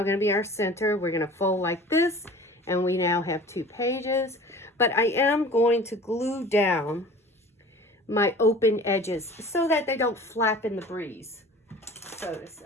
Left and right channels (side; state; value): both; normal; correlation 0.43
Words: going to be our center. We're going to fold like this, and we now have 2 pages. But I am going to glue down my open edges so that they don't flap in the breeze, so to